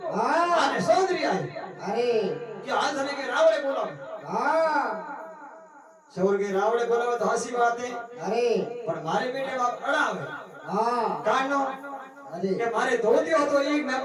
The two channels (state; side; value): identical; both; correlation 1.00